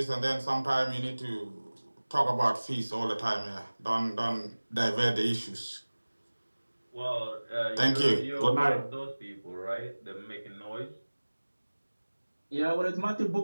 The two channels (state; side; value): inverted; both; correlation -1.00